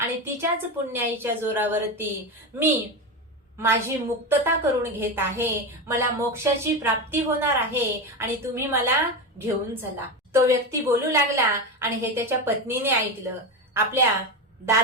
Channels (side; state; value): both; normal; correlation 0.17